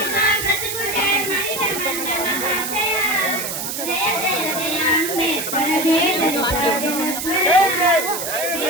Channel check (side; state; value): right; noise; hiss, 4 dB below the sound